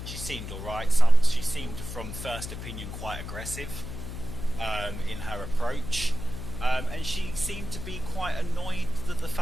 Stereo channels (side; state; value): left; noise; hum, 9 dB below the sound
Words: She seemed alright. She seemed, from first opinion, quite aggressive in her approach. And she seemed to be quite annoyed at the